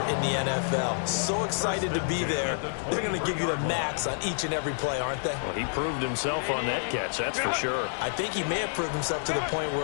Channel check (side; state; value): right; silent; 59 dB below the other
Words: in the NFL. So excited to be there. They're going to give you the max on each and every play, aren't they? Well, he proved himself on that catch, that's for sure. I think he may have proved himself to the point